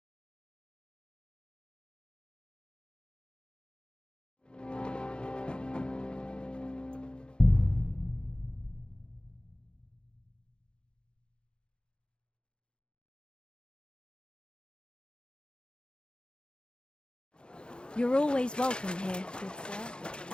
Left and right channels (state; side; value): late; right; 0.051 ms